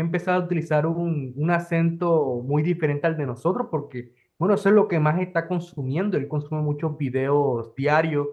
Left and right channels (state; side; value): identical; both; correlation 1.00